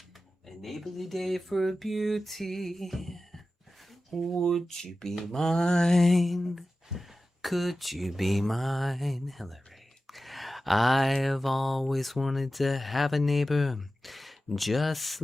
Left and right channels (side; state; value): both; normal; correlation 0.94